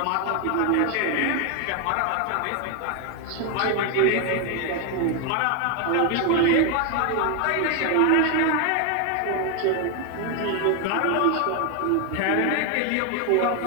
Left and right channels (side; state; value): both; different; correlation 0.01